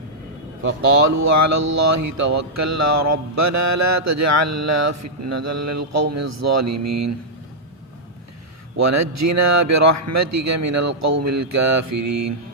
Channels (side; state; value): both; normal; correlation -0.08